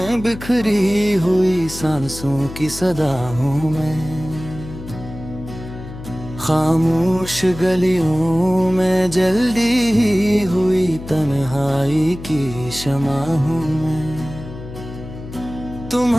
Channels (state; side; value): noise; left; hum, 12 dB below the sound